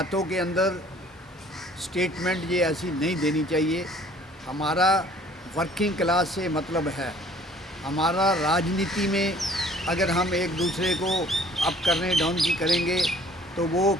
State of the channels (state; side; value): normal; both; correlation 0.55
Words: के अंदर स्टेटमेंट ये ऐसी नहीं देनी चाहिए। हमारा वर्किंग क्लास से मतलब है, हमारा राजनीति में अगर हम एक दूसरे को अप करने डाउन की करेंगे तो वो